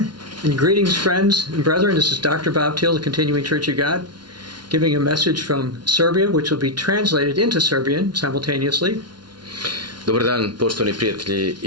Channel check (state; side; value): late; left; 0.70 ms